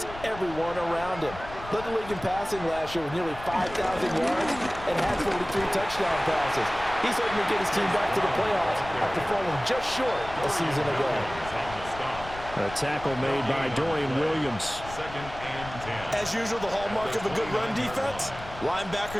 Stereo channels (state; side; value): noise; left; rumble, 14 dB below the sound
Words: everyone around him. Led the league in passing last year with nearly 5,000 yards and had 43 touchdown passes. He's hoping to get his team back to the playoffs after falling just short a season ago. A tackle made by Dorian Williams. As usual, the hallmark of a good run defense,